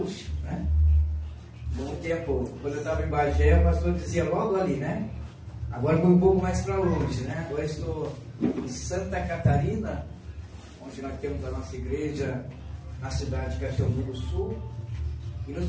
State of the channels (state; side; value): identical; both; correlation 1.00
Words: né? Muito tempo, quando eu estava em Bagé, o pastor dizia logo ali, né? Agora foi um pouco mais para longe, né? Agora estou em Santa Catarina, onde nós temos a nossa igreja na cidade de Caxiambu do Sul. E nos